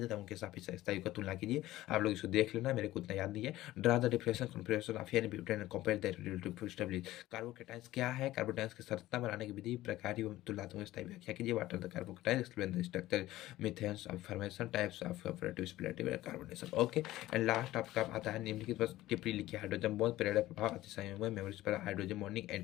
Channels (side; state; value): right; quieter; 16.0 dB